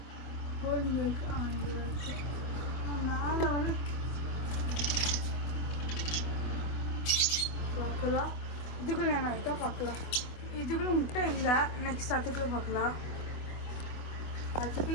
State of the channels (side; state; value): right; late; 24 ms